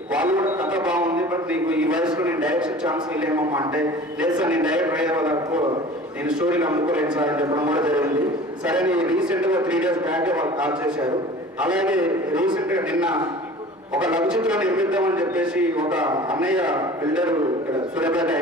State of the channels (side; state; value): both; normal; correlation 0.42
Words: వాళ్ళు కూడా కథ బాగుంది, బట్ నీకు ఈ వయసులో నేను డైరెక్షన్ ఛాన్స్ ఇవ్వలేమమ్మా అంటే, లేదు సార్ నేను డైరెక్టర్ అయ్యే వరకు నేను స్టోరీలు అమ్ముకోలేను సార్ అని చెప్పడం కూడా జరిగింది. సరే రీసెంట్ గా 3 days బ్యాక్ వాళ్ళు కాల్ చేశారు. అలాగే రీసెంట్ గా నిన్న ఒక లఘు చిత్రం నిర్మిద్దామని చెప్పేసి ఒక అన్నయ్య బిల్డర్ ఇక్కడ సూర్యాపేట